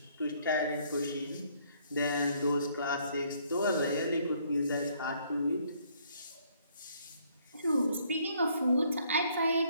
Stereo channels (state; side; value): inverted; both; correlation -0.65